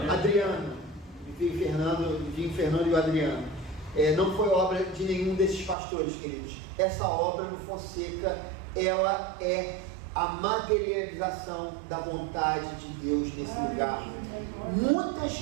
Adriano, Fernando e o Adriano. Não foi obra de nenhum desses pastores, queridos. Essa obra do Fonseca, ela é a materialização da vontade de Deus nesse lugar. Muitas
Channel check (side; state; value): left; drops out; at 5.8 s